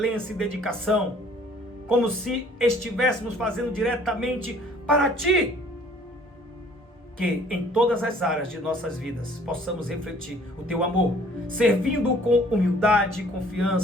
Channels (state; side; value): normal; both; correlation 0.56